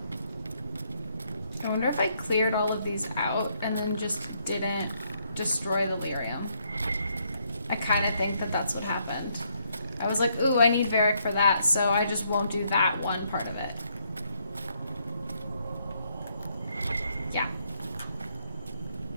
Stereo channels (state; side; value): inverted; both; correlation -0.74